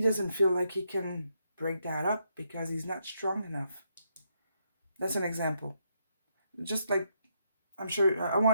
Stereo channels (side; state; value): both; inverted; correlation -0.78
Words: doesn't feel like he can break that up because he's not strong enough. That's an example. Just like, I'm sure I